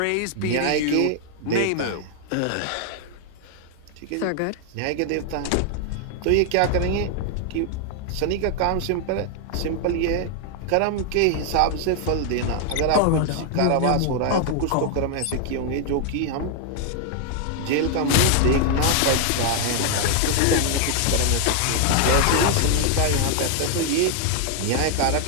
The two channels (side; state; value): both; different; correlation 0.00